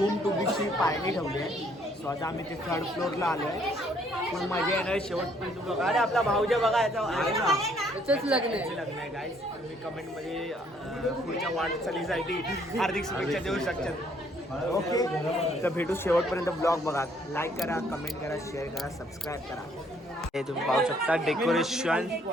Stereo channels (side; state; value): both; normal; correlation 0.65